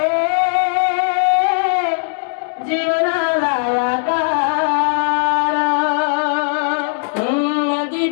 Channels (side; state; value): right; silent; 68 dB below the other